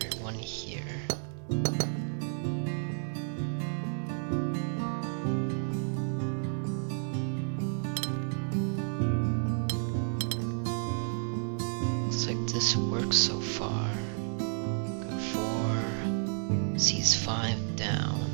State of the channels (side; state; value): left; silent; 57 dB below the other